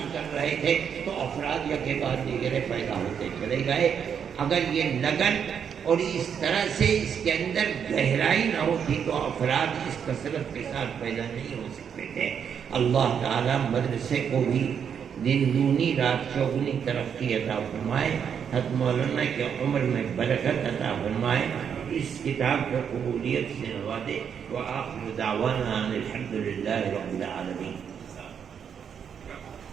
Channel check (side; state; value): left; quieter; 7.6 dB